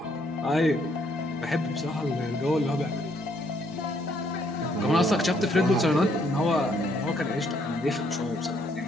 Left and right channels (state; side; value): normal; both; correlation 0.69